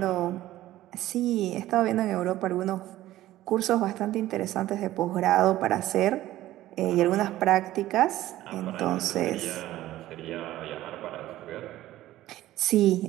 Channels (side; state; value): left; quieter; 15.0 dB